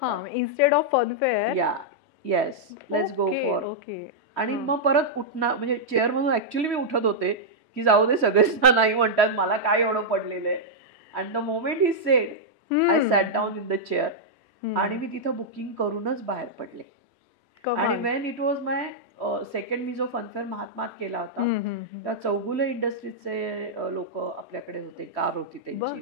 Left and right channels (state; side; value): late; left; 3.1 ms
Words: instead of funfair. Yes, let's go for. आणि मग परत उठणार, म्हणजे चेअरमधून ऍक्च्युली मी उठत होते की जाऊ दे, सगळेच नाही म्हणतात, मला काय एवढं पडलेलं आहे. And the moment he said, I sat down in the chair. आणि मी तिथं बुकिंग करूनच बाहेर पडले. आणि when it was my second, मी जो फनफेअर महात्मात केला होता, त्या चौगुले इंडस्ट्रीजचे लोक आपल्याकडे होते, कार होती त्यांची.